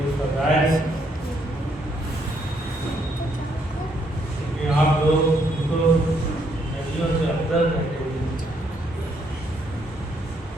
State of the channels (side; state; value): both; normal; correlation 0.72